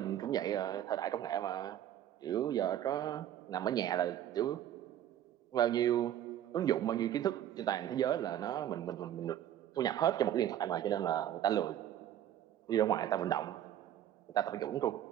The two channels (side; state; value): left; quieter; 11.2 dB